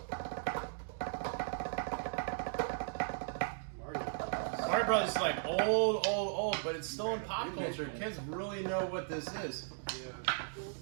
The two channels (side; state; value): left; silent; digital silence